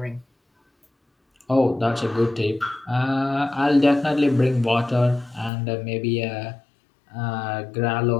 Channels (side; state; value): right; drops out; at 5.5 s